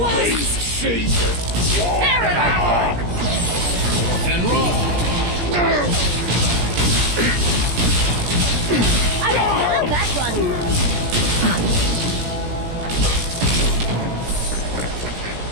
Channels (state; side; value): late; left; 17 ms